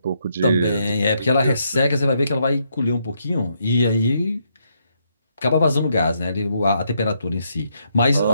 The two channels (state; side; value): inverted; both; correlation -0.76